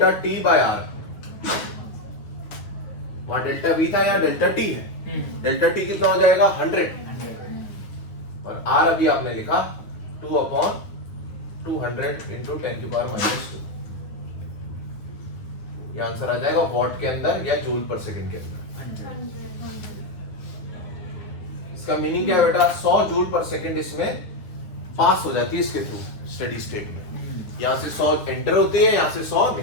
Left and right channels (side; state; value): right; late; 9.6 ms